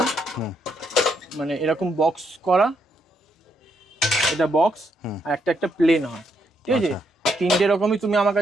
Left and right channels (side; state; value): both; normal; correlation 0.76